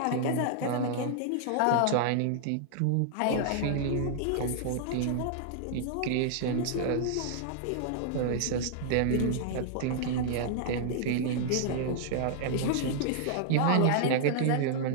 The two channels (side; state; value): both; different; correlation -0.01